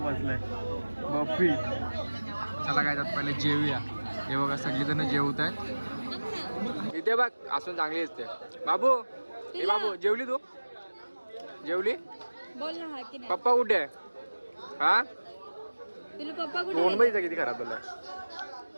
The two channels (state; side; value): inverted; both; correlation -1.00